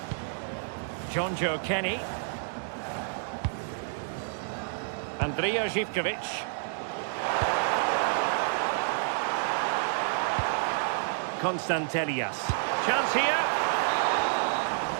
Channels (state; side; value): silent; left; digital silence